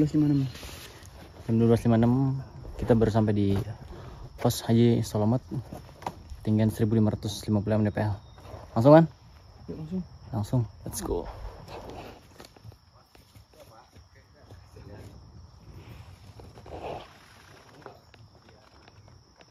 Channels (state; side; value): identical; both; correlation 1.00